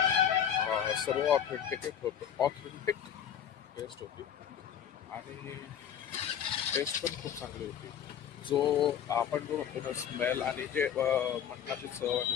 सर्व ऑथेंटिक टेस्ट होती आणि टेस्ट पण खूप चांगली होती. जो आपण जो म्हणतो ना स्मेल आणि जे मटणाची चव आणि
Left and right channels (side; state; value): right; quieter; 9.1 dB